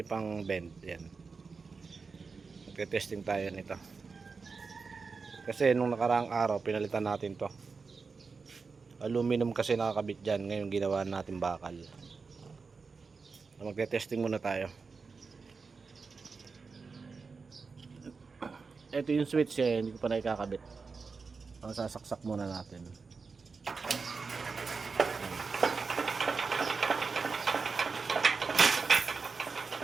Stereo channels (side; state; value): left; quieter; 4.7 dB